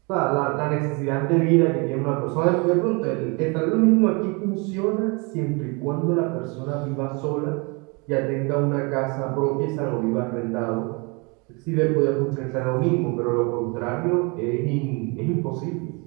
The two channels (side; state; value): left; quieter; 30.3 dB